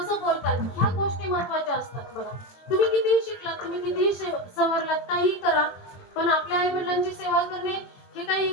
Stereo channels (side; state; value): right; late; 22 ms